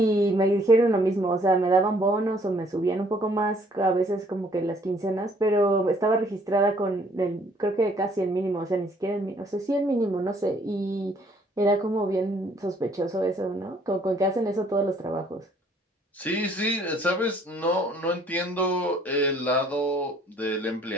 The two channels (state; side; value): normal; both; correlation 0.61